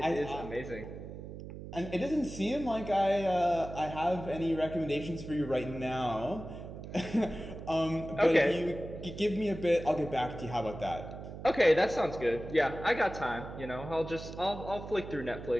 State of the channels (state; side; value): noise; right; hum, 11 dB below the sound